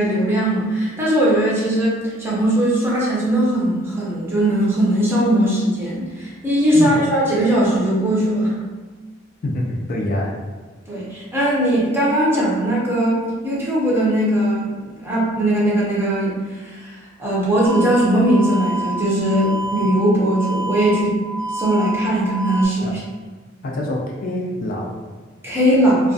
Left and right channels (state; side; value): normal; both; correlation 0.58